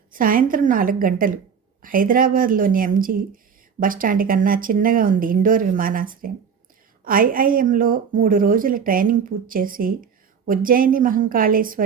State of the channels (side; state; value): left; quieter; 6.8 dB